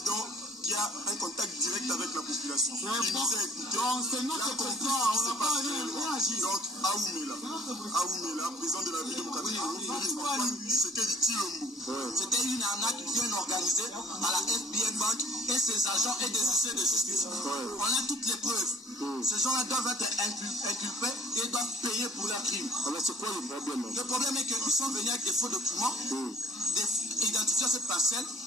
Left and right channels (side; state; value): both; normal; correlation 0.55